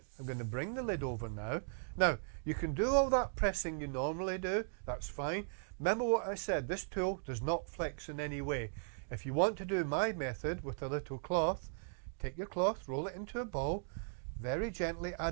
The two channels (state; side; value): silent; left; digital silence